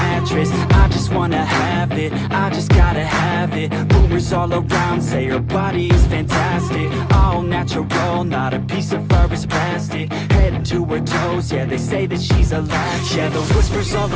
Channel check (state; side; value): identical; both; correlation 1.00